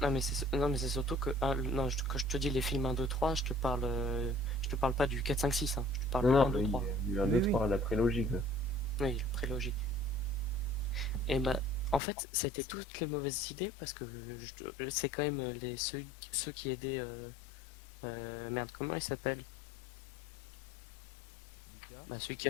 Non, mais c'est surtout que. Non, quand je te dis les films 1, 2, 3, je te parle pas du 4, 5, 6, hein. Je te parle Non, du non, 1, 2, mais 3. il y a un, Oui, 2, oui. 3, la prélogie, quoi. Oui, la prélogie. Et bah, en fait, c'était toutes les mauvaises idées parce que c'est quand même ceux qui aidaient. Merde, comment il s'appelle? Lucas. Bah, celui qui a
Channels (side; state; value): right; drops out; at 12.0 s